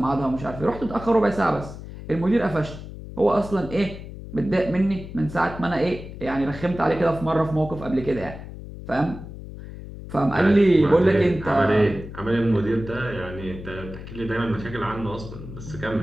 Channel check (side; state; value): left; noise; hum, 12 dB below the sound